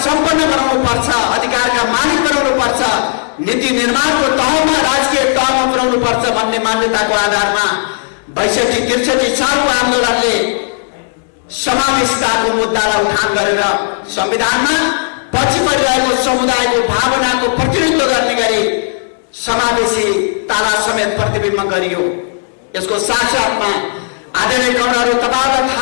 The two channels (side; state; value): right; silent; digital silence